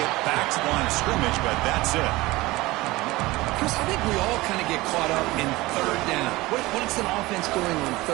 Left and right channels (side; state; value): left; quieter; 20.1 dB